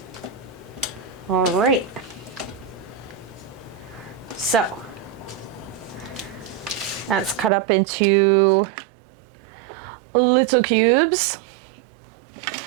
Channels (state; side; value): drops out; left; at 7.5 s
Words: All right. So that's cut up into little cubes.